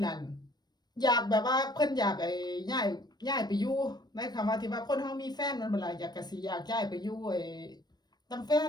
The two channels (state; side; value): late; right; 0.20 ms